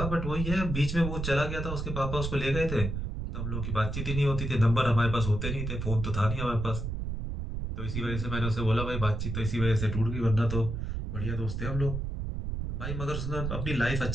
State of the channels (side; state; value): right; noise; rumble, 4 dB below the sound